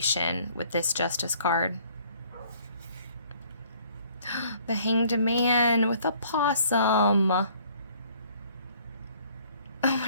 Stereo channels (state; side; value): inverted; both; correlation -0.59